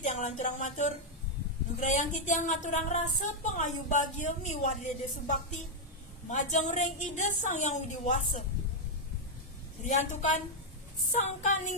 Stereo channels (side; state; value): both; normal; correlation -0.01